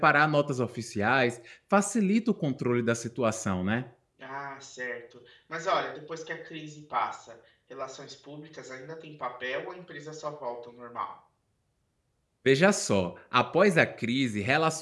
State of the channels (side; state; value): both; identical; correlation 1.00